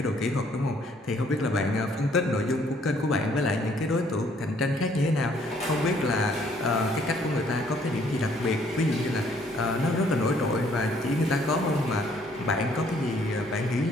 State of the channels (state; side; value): normal; both; correlation 0.63